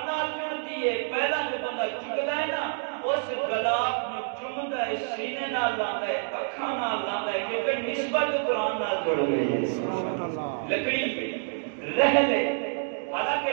نال جڑتی ہے۔ پہلا جو بندہ چکتا ہے نا اس غلاف میں چومتا ہے، سینے نال لاتا ہے، اکھاں نال لاتا ہے، کیونکہ نسبت قرآن نال جڑ گئی ہے۔ لکڑی رہ لے، حالانکہ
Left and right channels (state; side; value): silent; left; digital silence